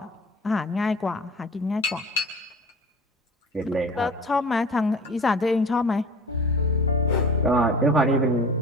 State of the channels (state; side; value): normal; both; correlation 0.39